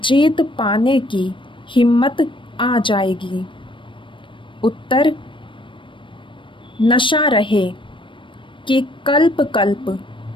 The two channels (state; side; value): late; right; 0.24 ms